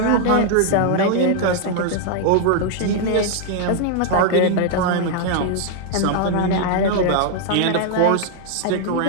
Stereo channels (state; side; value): different; both; correlation 0.00